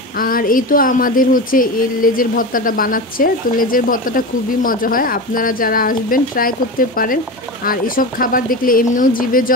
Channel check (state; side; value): normal; both; correlation 0.24